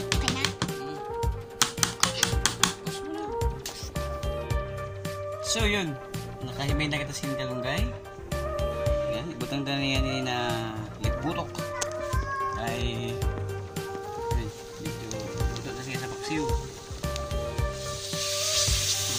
So yun, nakahimay na kita sin kalunggay. Yan, ibutang na niya ni na lipburok. Ay, yun, medyo ito na siya sa paksiw.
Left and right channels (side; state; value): both; identical; correlation 1.00